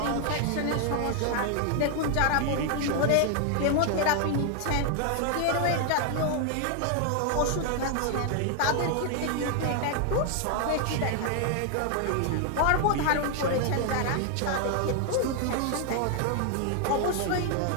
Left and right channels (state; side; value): different; both; correlation 0.00